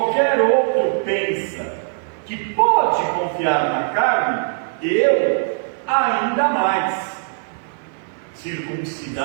outro pensa que pode confiar na carne, eu ainda mais.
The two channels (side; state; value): left; silent; digital silence